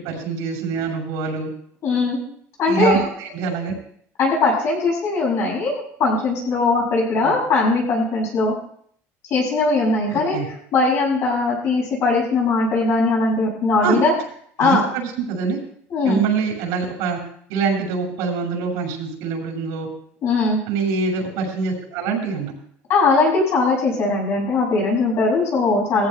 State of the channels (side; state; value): both; normal; correlation 0.45